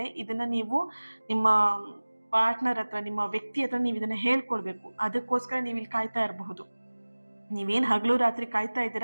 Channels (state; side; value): inverted; both; correlation -1.00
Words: ಇದನ್ನ ನೀವು ನಿಮ್ಮ ಪಾರ್ಟ್ನರ್ ಹತ್ರ, ನಿಮ್ಮ ವ್ಯಕ್ತಿ ಹತ್ರ ನೀವು ಇದನ್ನ ಹೇಳ್ಕೊಳ್ಬೇಕು. ಅದಕ್ಕೋಸ್ಕರ ನೀವು ಇಲ್ಲಿ ಕಾಯ್ತಾ ಇರಬಹುದು. ನೀವೇನು ಹಗಲು ರಾತ್ರಿ ಕಾಯ್ತಾ